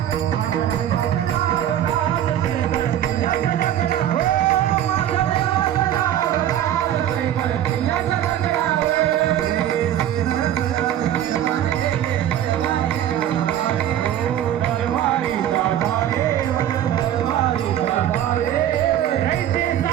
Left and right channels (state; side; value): quieter; left; 11.3 dB